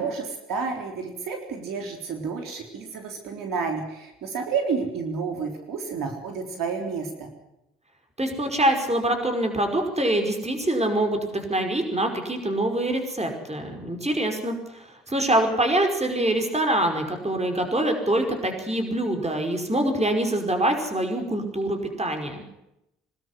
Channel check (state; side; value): normal; both; correlation 0.52